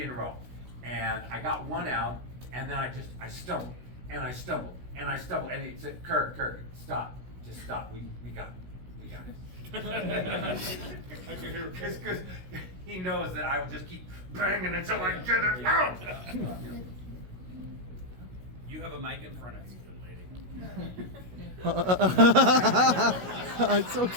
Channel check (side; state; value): left; late; 16 ms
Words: in a row. And I got one out, and then I stumbled, and I stumbled, and I stumbled, and he said, Kirk, stop. Just stop. We got it. We got it. Because he knows that I will just keep banging until I get it out. You have a mic in front of you, good lady. It's